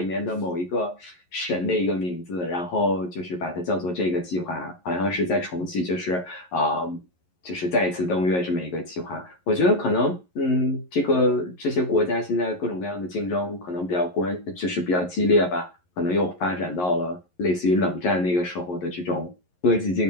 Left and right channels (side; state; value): right; late; 11 ms